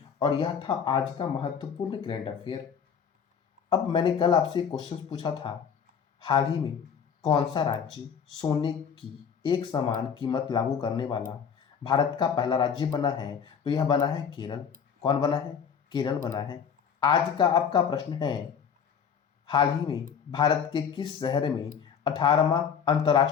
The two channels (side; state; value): right; quieter; 7.2 dB